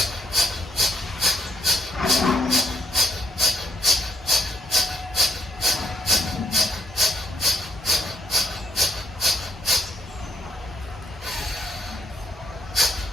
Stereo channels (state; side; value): normal; both; correlation 0.72